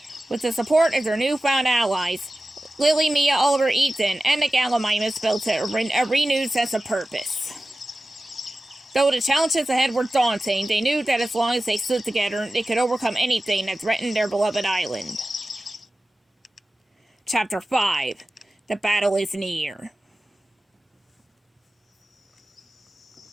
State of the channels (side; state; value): both; normal; correlation 0.95